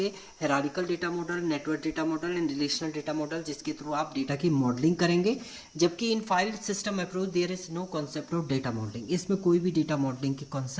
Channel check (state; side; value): identical; both; correlation 1.00